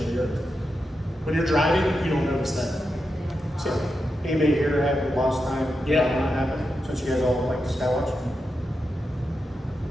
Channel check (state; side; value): normal; both; correlation 0.88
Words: the Earth. When you're driving, you don't notice that. So, Anybody here had lost time? Yeah. Not happen? Since you guys all like to skywatch?